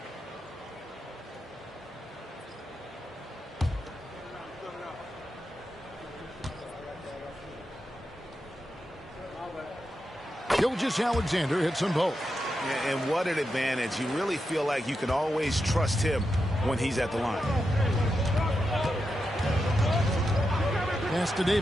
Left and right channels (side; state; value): both; normal; correlation 0.87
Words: Gilgeous-Alexander hits them both. And what an advantage. You really feel like you can always trust him when he's at the line. Pass to